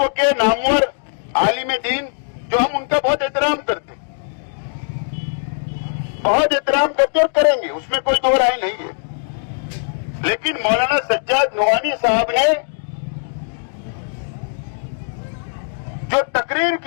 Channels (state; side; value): silent; right; digital silence